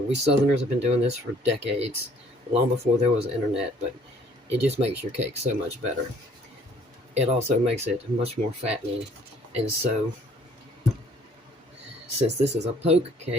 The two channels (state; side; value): normal; both; correlation 0.59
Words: We Southerners have been doing this for decades, long before there was internet, but it just makes your cake so much better. It also makes it much more fattening. And so, since this is a poke